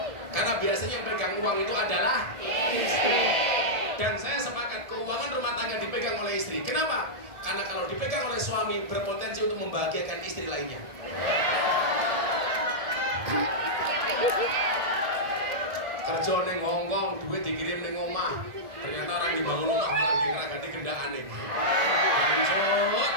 Karena biasanya yang pegang uang itu adalah istri. Dan saya sepakat keuangan rumah tangga dipegang oleh istri. Kenapa? Karena kalau dipegang oleh suami berpotensi untuk membahagiakan istri lainnya. Kerja neng Hongkong, duit dikirim neng omah. Ternyata orang dibangun rumah malah dikeragati gendaan nih.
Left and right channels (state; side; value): late; left; 1.7 ms